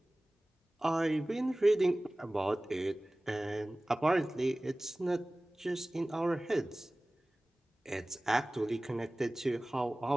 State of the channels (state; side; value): normal; both; correlation 0.98